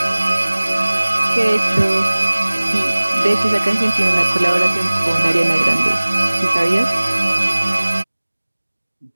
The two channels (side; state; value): both; inverted; correlation -1.00